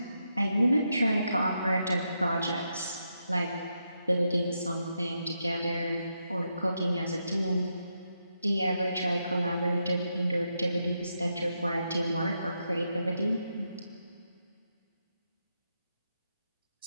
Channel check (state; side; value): inverted; both; correlation -0.83